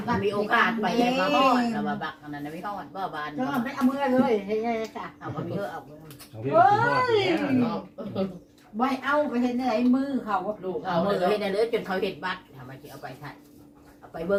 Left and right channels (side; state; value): both; identical; correlation 1.00